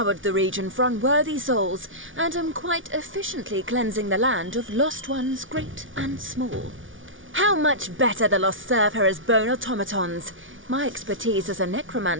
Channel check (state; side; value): late; left; 0.57 ms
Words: the region for unworthy souls, and am quite efficiently cleansing the land of lost ones great and small. How much better the lost serve her as bone automatons. My expertise as a